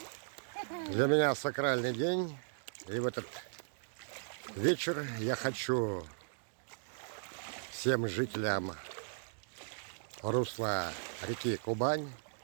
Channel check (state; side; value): silent; left; digital silence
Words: Для меня сакральный день, и в этот вечер я хочу всем жителям русла реки Кубань